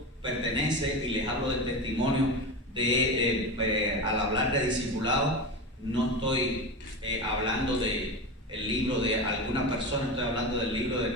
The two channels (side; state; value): both; normal; correlation 0.23